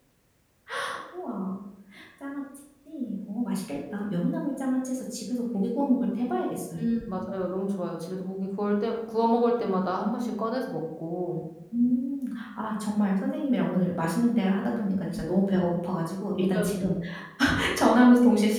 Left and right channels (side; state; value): both; identical; correlation 1.00